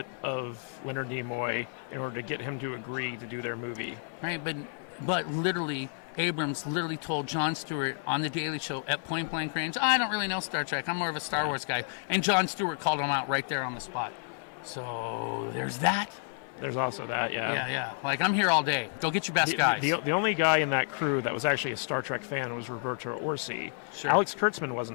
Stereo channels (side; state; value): right; silent; 57 dB below the other